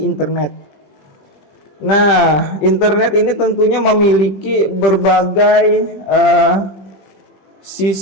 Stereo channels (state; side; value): late; right; 21 ms